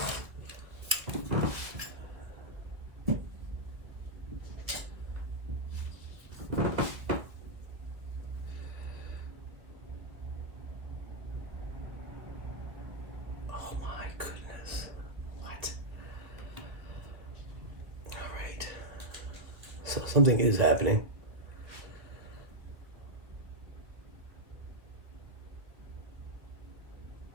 Something is happening.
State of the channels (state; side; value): late; left; 1.9 ms